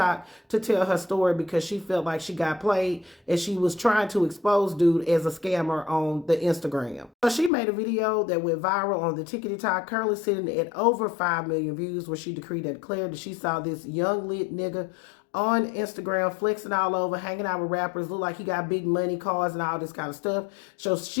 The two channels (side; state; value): right; drops out; at 7.5 s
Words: to tell her story because she felt like she got played and she was trying to expose dude as a scammer on the Instagram. So she made a video that went viral on the TikTok, currently sitting at over 5 million views, where she decreed and declared that she saw this young lit nigga on Instagram flexing all over, hanging out with rappers, look like he got big money, cars, and all this kind of stuff. So